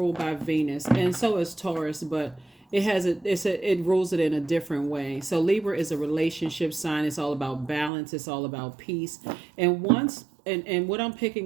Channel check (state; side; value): drops out; left; at 7.9 s